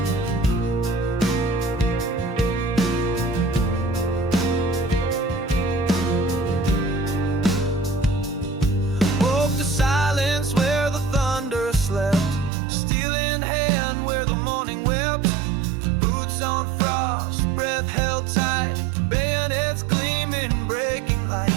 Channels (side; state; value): left; drops out; at 12.5 s